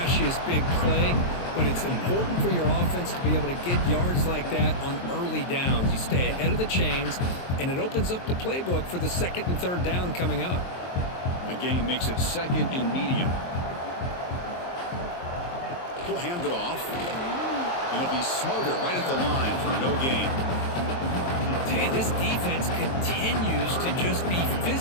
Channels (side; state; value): right; late; 23 ms